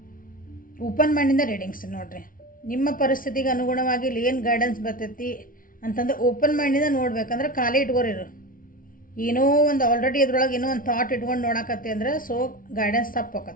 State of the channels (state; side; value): late; right; 0.40 ms